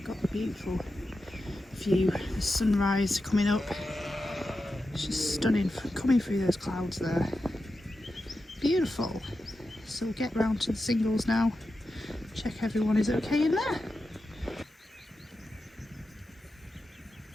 got the beautiful view, the sunrise coming up. It's just stunning, coming through those clouds there. Beautiful. So we'll get round to the singles now. Check everyone is okay in there.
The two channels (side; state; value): both; normal; correlation 0.91